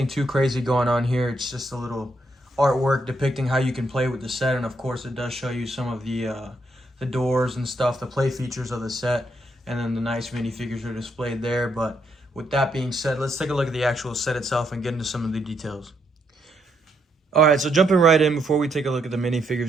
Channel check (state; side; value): normal; both; correlation 0.76